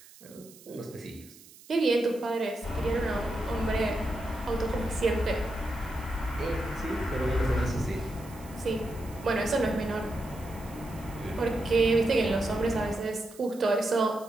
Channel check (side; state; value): right; noise; hiss, 22 dB below the sound